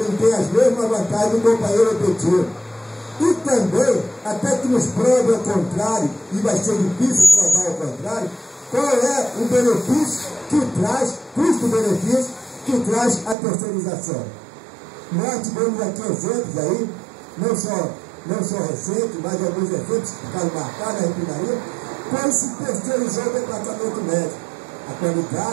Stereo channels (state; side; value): drops out; left; at 13.4 s